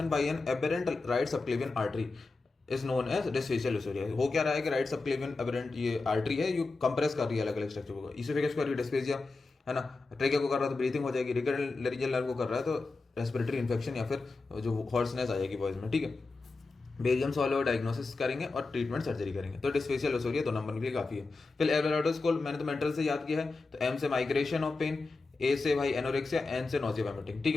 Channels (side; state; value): right; quieter; 3.7 dB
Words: by an aberrant right subclavian artery is known as dysphagia lusoria. हो क्या रहा है कि राइट सबक्लेवियन एबेरेंट ये आर्टरी है, ये कंप्रेस कर रही है अलग अलग स्ट्रक्चर को, इसोफेगस को कर रही है डिस्फेजिया है ना, ट्रेकिया को कर रहा है तो ब्रीथिंग हो जाएगी, रिकरेंट लेरिंजियल नर्व को कर रहा है तो रेस्पिरेटरी इन्फेक्शन या फिर जो हॉर्सनेस आ जाएगी बॉयज में। ठीक है, बेरियम सॉल्व डायग्नोसिस करेंगे और ट्रीटमेंट सर्जरी करेंगे। तो डिस्फेशियल ओसोरिया 2 नंबर के लिए काफी है। फिर एवरेटोस को मैंने तो मेंटल से याद किया है, तो एम से माइग्रेशन ऑफ पेन, ए से भाई एनोरेक्सिया, एन से नोजिया वोमिटिंग। ठीक